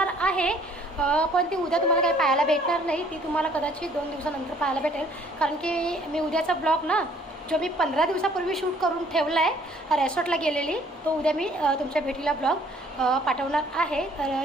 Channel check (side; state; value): both; normal; correlation 0.59